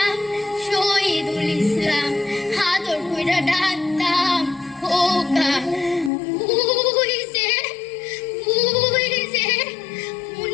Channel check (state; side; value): drops out; right; at 6.1 s